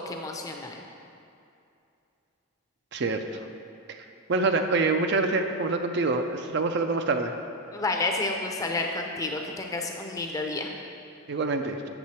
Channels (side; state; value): both; normal; correlation 0.03